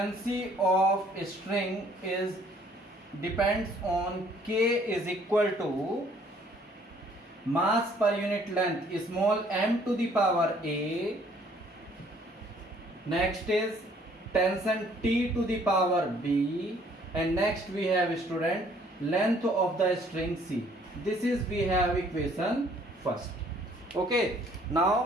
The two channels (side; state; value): both; normal; correlation 0.61